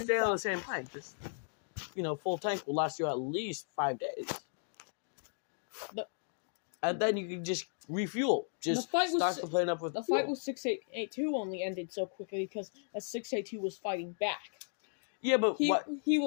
on the same plane. Just full tank will last you at least 5 days. And then you can just refuel. Just stock the plane up with the fuel. fight with 682 only ended so quickly because 682 was fighting back. Yeah, but he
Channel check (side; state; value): right; silent; digital silence